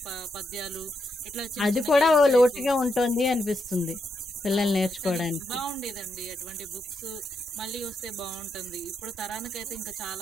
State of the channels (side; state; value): both; normal; correlation 0.81